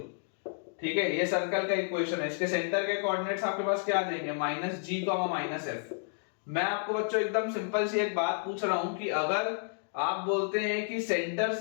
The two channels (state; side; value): silent; right; digital silence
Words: ठीक है, ये सर्कल का इक्वेशन है। इसके सेंटर के कोऑर्डिनेट्स आपके पास क्या आ जाएंगे, -g, -f। मैं आपको बच्चों एकदम सिंपल सी एक बात पूछ रहा हूं कि अगर आप बोलते हैं कि सेंटर